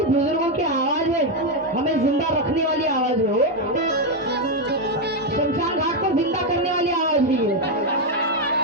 बुजुर्गों की आवाज है, हमें जिंदा रखने वाली आवाज है वो. शमशान घाट को जिंदा करने वाली आवाज भी है.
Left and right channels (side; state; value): both; normal; correlation 0.04